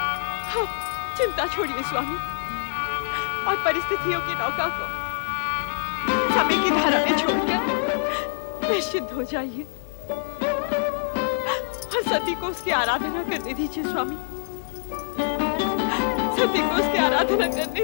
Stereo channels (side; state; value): right; silent; 62 dB below the other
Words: आप चिंता छोड़िए स्वामी, और परिस्थितियों की नौका को समय की धारा में छोड़कर निश्चिंत हो जाइए और सती को उसकी आराधना करने दीजिए। स्वामी, सती को उसकी आराधना